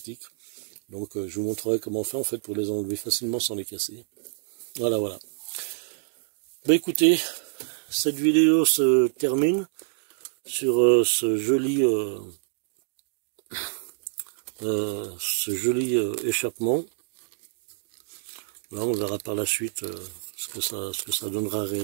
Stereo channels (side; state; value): left; silent; digital silence